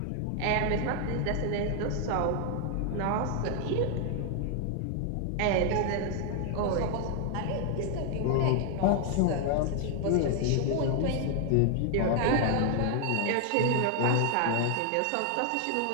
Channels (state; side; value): different; both; correlation 0.00